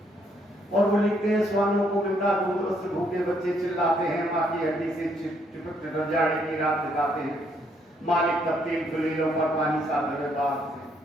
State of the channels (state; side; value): normal; both; correlation 0.71